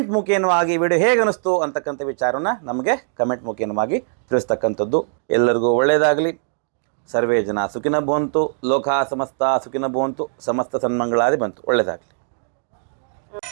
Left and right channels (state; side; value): silent; left; digital silence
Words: ಮುಖೇನವಾಗಿ ವಿಡಿಯೋ ಹೇಗೆ ಅನ್ನಿಸ್ತು ಅಂತಕ್ಕಂಥ ವಿಚಾರವನ್ನು ನಮಗೆ ಕಮೆಂಟ್ ಮುಖೇನವಾಗಿ ತಿಳಿಸ್ತಕ್ಕಂಥದ್ದು. ಎಲ್ಲರಿಗೂ ಒಳ್ಳೆಯದಾಗಲಿ. ಸರ್ವೇ ಜನ ಸುಖಿನ ಭವಂತು, ಲೋಕ ಸಮಸ್ತ ಸುಖಿನ ಭವಂತು, ಸಮಸ್ತ ಸನ್ಮಂಗಳಾದಿ ಬಂತು. ಒಳ್ಳೆಯದಾಗಲಿ.